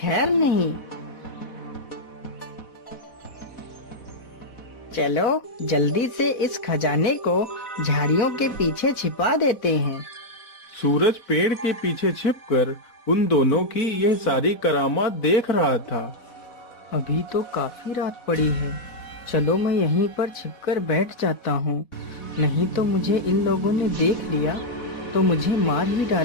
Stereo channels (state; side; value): late; right; 4.1 ms